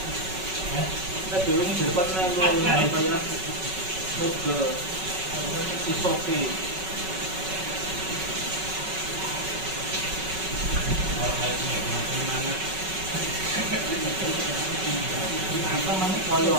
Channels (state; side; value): late; left; 5.3 ms